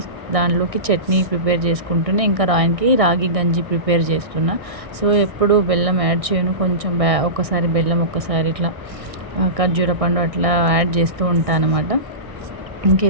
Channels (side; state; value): left; late; 1.6 ms